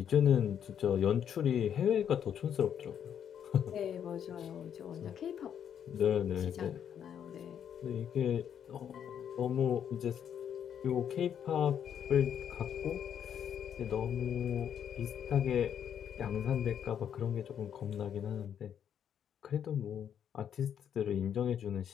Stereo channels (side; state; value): right; quieter; 8.8 dB